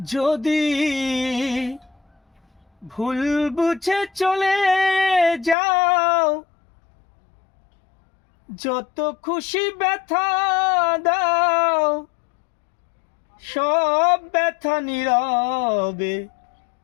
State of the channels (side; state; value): right; drops out; at 5.6 s